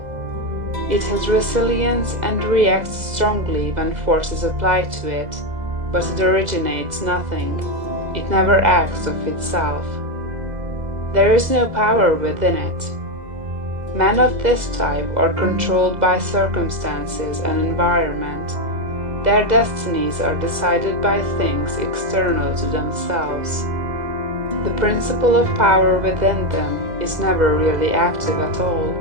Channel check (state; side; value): late; left; 2.0 ms